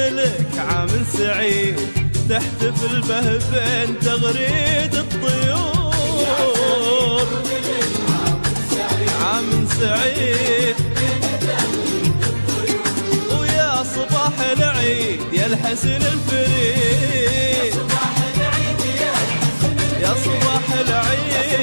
عام سعيد، تحتفل به بين تغريد الطيور. عام سعيد ويا صباح العيد يا الحسن الفريد،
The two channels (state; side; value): inverted; both; correlation -1.00